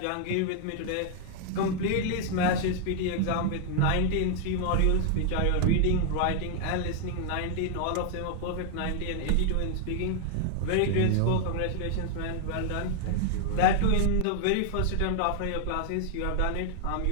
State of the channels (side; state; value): both; different; correlation 0.00